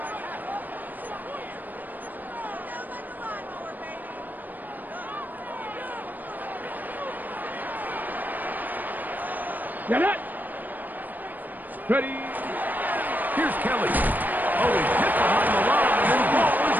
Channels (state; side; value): late; left; 0.086 ms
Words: Get it. Ready. Here's Kelly. Oh, he hit behind the line, and the ball is